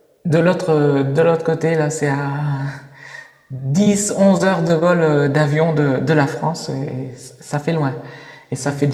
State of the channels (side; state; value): both; identical; correlation 1.00